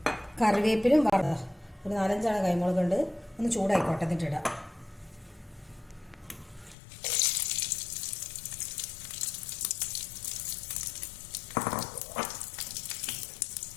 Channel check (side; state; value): right; drops out; at 6.8 s